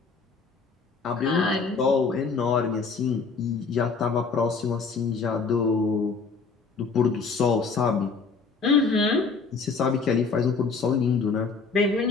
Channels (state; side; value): quieter; right; 4.8 dB